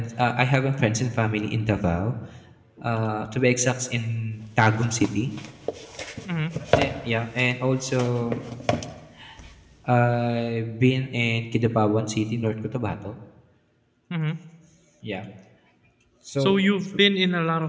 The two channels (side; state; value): both; identical; correlation 1.00